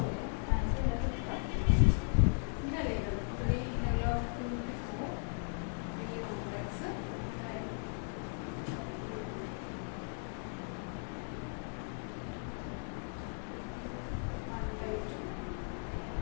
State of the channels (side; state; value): right; silent; 53 dB below the other